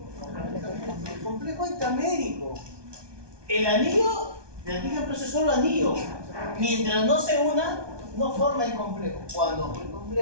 El complejo intramédico. El anillo de antígeno protector es solo anillo. Mientras no se una, no forma el complejo. Cuando el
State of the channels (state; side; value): late; left; 1.2 ms